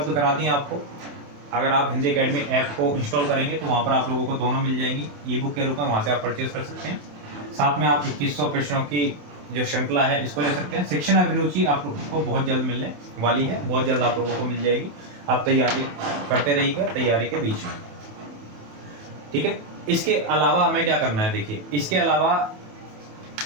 करा दी आपको। अगर आप हिंदी अकेडमी ऐप को इंस्टॉल करेंगे तो वहाँ पर आप लोगों को दोनों मिल जाएंगी ई बुक के रूप में, वहाँ से आप परचेज कर सकते हैं। साथ में आप 2100 प्रश्नों की जो श्रृंखला है इसको ले सकते हैं। शिक्षण अभिरुचि आप लोगों को बहुत जल्द मिलने वाली है, बहुत जल्द आप लोगों को मिल जाएगी। आप तैयारी करते रहिएगा तैयारी के बीच में, ठीक है। इसके अलावा हमें क्या करना है, देखिए इसके अलावा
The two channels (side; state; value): left; late; 28 ms